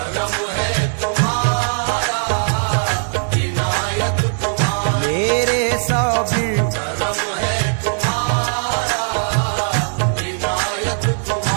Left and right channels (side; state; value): left; silent; 67 dB below the other